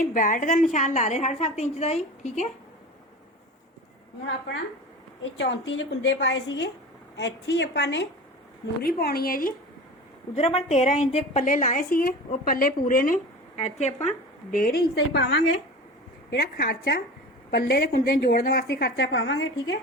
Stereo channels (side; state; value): both; normal; correlation 0.34